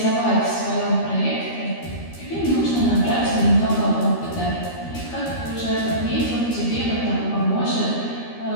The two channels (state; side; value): late; right; 13 ms